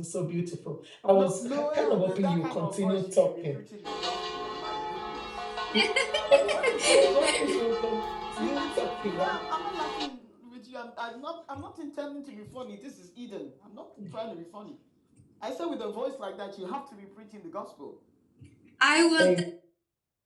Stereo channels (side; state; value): both; identical; correlation 1.00